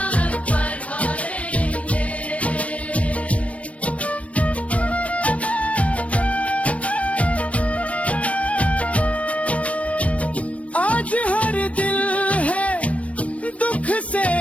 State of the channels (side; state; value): right; late; 0.064 ms